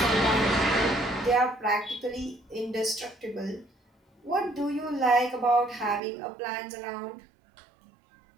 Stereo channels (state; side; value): drops out; left; at 6.0 s